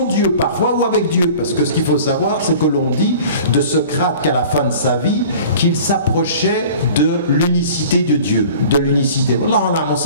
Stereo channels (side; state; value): both; inverted; correlation -0.44